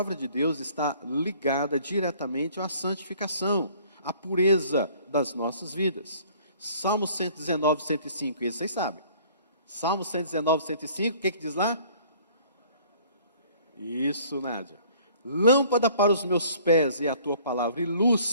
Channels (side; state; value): both; inverted; correlation -0.54